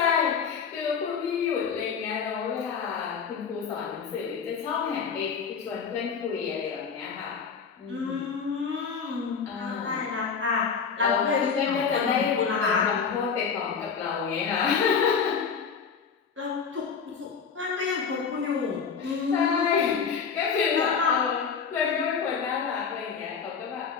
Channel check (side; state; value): right; quieter; 6.2 dB